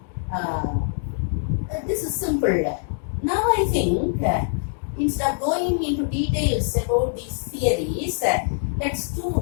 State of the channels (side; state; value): right; silent; digital silence